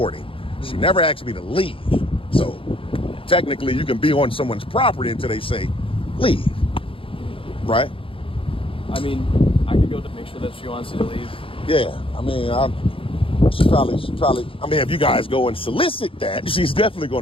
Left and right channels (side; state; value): right; late; 0.26 ms